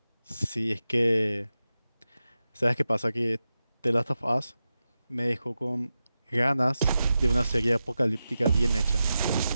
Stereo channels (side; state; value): both; inverted; correlation -0.92